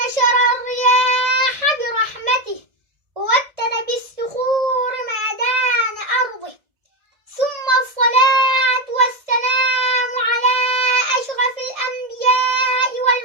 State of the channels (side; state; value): left; late; 1.7 ms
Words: الرياح برحمته ووتر بالصخور ميدان أرضه، ثم الصلاة والسلام على أشرف الأنبياء